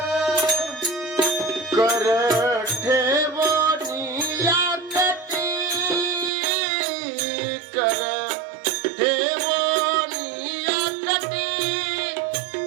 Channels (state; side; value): drops out; left; at 6.3 s